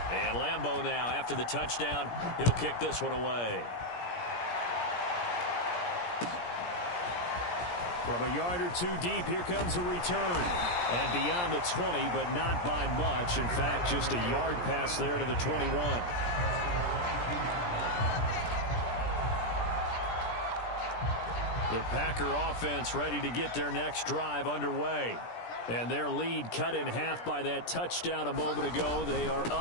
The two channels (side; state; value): right; late; 17 ms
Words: And Lambeau now, after the touchdown, he'll kick this one away. From a yard or two deep, here comes a return. And beyond the 20, but not by much. In fact, just a yard pass there to the 21. The Packer offense ready to get their next drive underway. And their lead cut in half by that touchdown a moment ago. They are